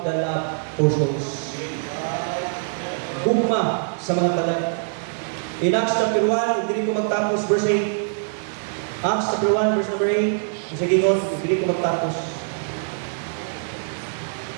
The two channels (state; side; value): silent; left; digital silence